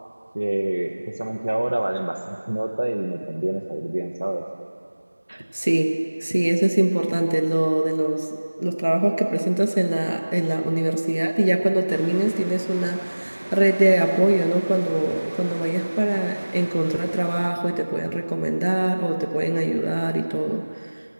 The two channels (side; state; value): both; inverted; correlation -1.00